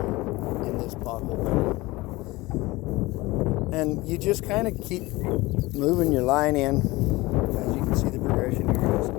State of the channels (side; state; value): right; quieter; 20.9 dB